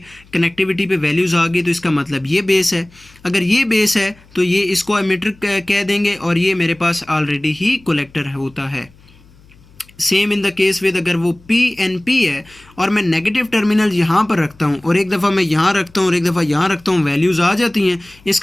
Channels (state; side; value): noise; left; hum, 27 dB below the sound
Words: कनेक्टिविटी पे वैल्यूज़ आ गई, तो इसका मतलब ये बेस है। अगर ये बेस है तो ये इसको एमिटर कह देंगे और ये मेरे पास ऑलरेडी ही कलेक्टर होता है। Same in the case with अगर वो पीएनपी है और मैं नेगेटिव टर्मिनल यहाँ पर रखता हूँ और एक दफ़ा मैं यहाँ रखता हूँ और एक दफ़ा यहाँ रखता हूँ, वैल्यूज़ आ जाती हैं,